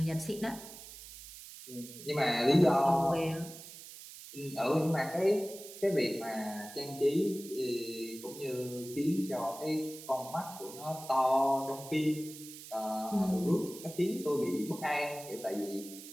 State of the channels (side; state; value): right; noise; hiss, 14 dB below the sound